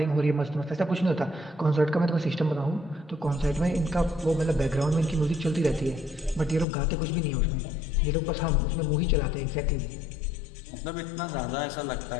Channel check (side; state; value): right; drops out; at 6.7 s